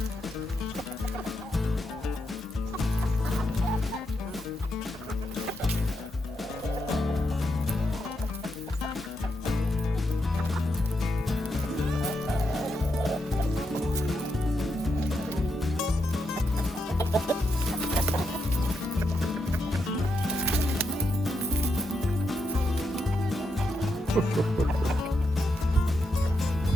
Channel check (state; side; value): normal; both; correlation 0.82